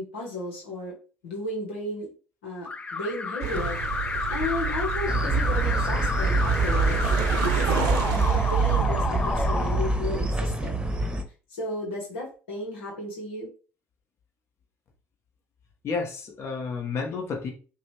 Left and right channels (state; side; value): normal; both; correlation 0.57